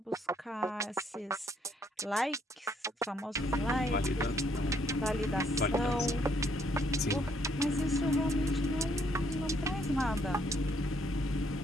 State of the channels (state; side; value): normal; both; correlation 0.69